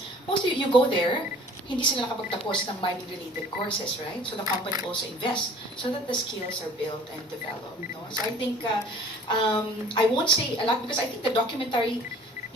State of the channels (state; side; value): normal; both; correlation 0.50